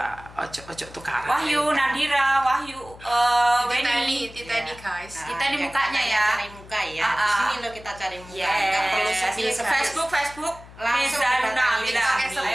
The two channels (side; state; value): left; noise; hum, 19 dB below the sound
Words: ojo tukaran. Wahyu, Nadira, Wahyu, Weni. Titani, guys. Kita ini mukanya ya. Cari muka ya. Ah, Di ah. sini lo kita cari muka. Yes. Nggak perlu sepil Facebook. Langsung Miza didatangi Nabila. kami. Sepi,